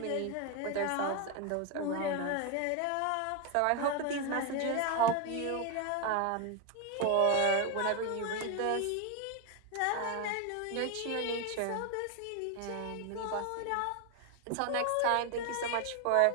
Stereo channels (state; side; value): different; both; correlation 0.01